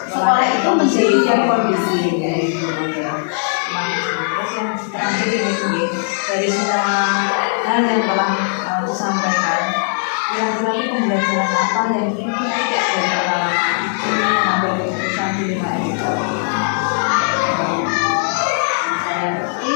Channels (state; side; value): silent; right; 67 dB below the other